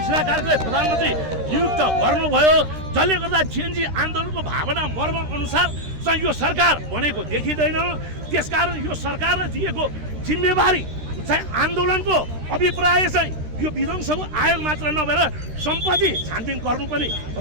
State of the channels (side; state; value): left; late; 13 ms